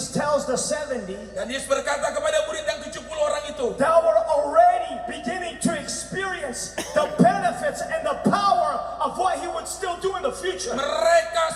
tells the 70, Dan Yesus berkata kepada murid yang 70 orang itu, thou are already beginning to experience the benefits and the power of what he would still do in the future. mereka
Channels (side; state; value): both; identical; correlation 1.00